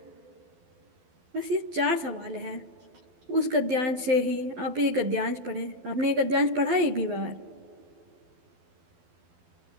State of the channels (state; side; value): late; left; 12 ms